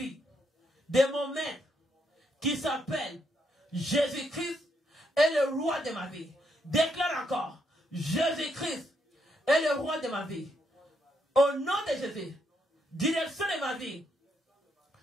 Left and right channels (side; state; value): both; normal; correlation 0.77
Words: de mon maître qui s'appelle Jésus-Christ est le roi de ma vie. Déclare encore, Jésus-Christ est le roi de ma vie. Au nom de Jésus, direction de ma vie